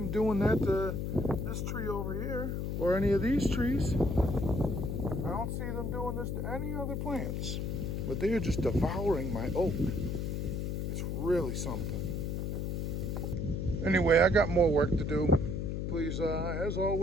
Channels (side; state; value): left; noise; hum, 2 dB below the sound